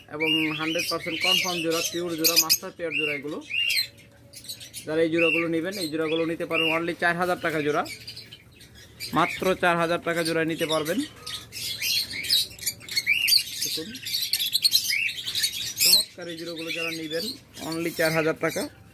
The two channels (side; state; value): both; identical; correlation 1.00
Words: এবং 100% কনফার্ম জোড়া, পিওর জোড়া, মাস্টার পেয়ার জোড়া এগুলো। যারা এই জোড়াগুলো নেবেন এই জোড়াগুলো নিতে পারবেন অনলি 4000 টাকা জোড়া। মাত্র 4000 টাকা জোড়া নিতে পারবেন। দেখুন চমৎকার এই জোড়াগুলো যারা নেবেন অনলি 4000 টাকা।